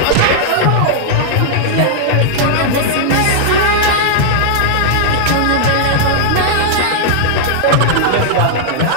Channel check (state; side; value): different; both; correlation -0.01